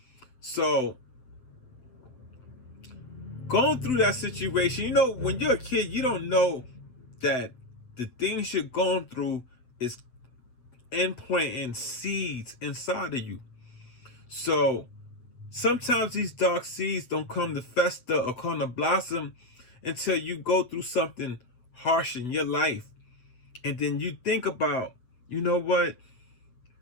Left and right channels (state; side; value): late; right; 7.9 ms